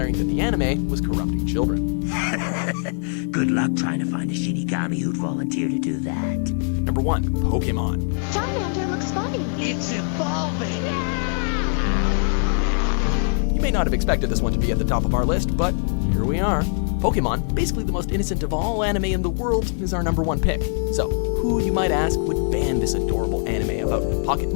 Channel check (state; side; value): silent; right; 64 dB below the other